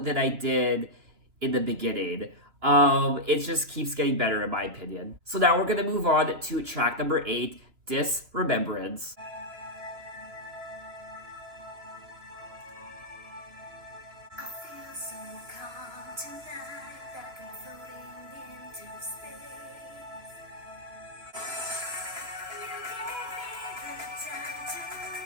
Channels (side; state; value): left; late; 3.2 ms